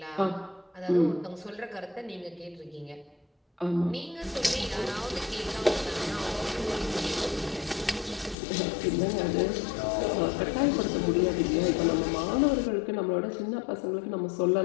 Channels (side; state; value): right; drops out; at 8.3 s